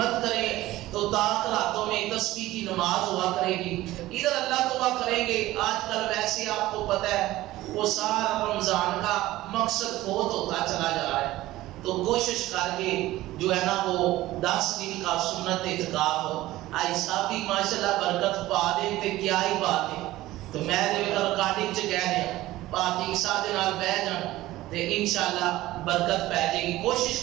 کریں تو طاق راتوں میں تسبیح کی نماز ہوا کرے گی، ادھر اللہ دعا کریں گے۔ آج کل ویسے آپ کو پتہ ہے وہ سارا رمضان کا مقصد فوت ہوتا چلا جا رہا ہے، تو کوشش کر کے جو ہے نا وہ 10 دن کا سنت اعتکاف ہو، آئی صاحب بھی ماشاءاللہ برکت پا دے تے کیا ہی بات ہے۔ تو میں دے ریکارڈنگ چ کہہ رہا پاتی صاحب دے نال بیٹھ جان تے انشاءاللہ برکت پہ جائے گی۔ کوشش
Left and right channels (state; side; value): quieter; left; 16.6 dB